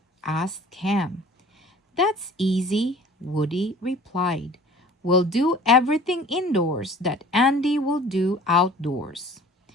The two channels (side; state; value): both; normal; correlation 0.47